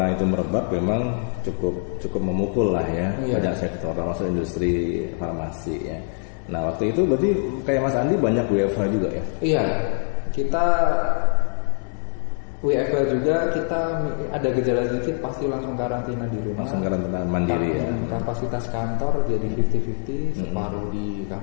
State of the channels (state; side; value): silent; right; 56 dB below the other